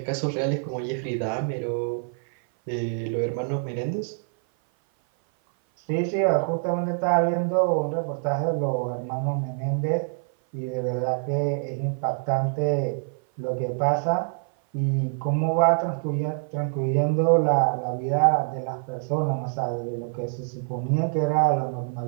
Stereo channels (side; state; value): left; silent; 56 dB below the other